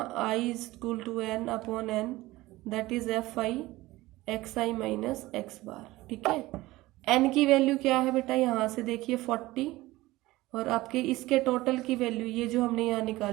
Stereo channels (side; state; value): left; quieter; 18.6 dB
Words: I is equal to n/n, that is fi xi minus x bar. ठीक है, n की वैल्यू क्या है बेटा, यहाँ से देखिए 40, और आपके इसके टोटल की वैल्यू ये जो हमने यहाँ